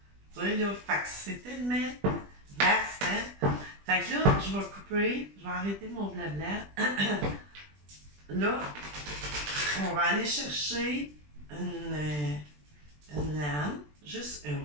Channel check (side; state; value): left; late; 20 ms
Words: Tu sais, là, fait que c'est tellement vaste, hein? Fait que là, je vais couper, je vais arrêter mon blabla. Là, on va aller chercher une lame, juste